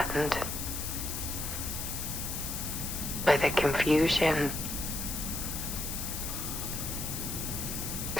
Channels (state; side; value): noise; left; hiss, 4 dB below the sound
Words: by the confusion,